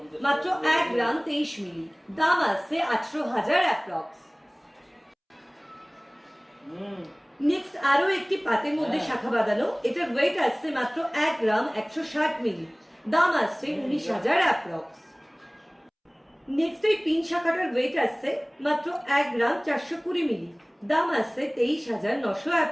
মাত্র 1 গ্রাম 23 মিলি, দাম আসছে 18,000 অ্যাপ্রক্স। নেক্সট আরো একটি পাতের মধ্যে শাখা বাঁধানো, এটার ওয়েট আসছে মাত্র 1 গ্রাম 160 মিলি, দাম আসছে 19,000 অ্যাপ্রক্স। নেক্সট এই পিন শাখাটার ওয়েট আসছে মাত্র 1 গ্রাম 420 মিলি, দাম আসছে 23,900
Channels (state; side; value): identical; both; correlation 1.00